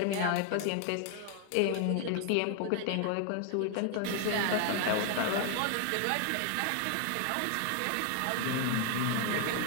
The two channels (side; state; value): both; different; correlation 0.00